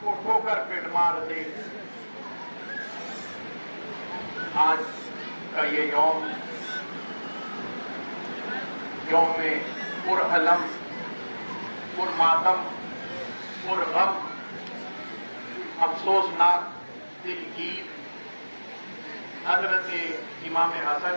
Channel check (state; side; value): inverted; both; correlation -1.00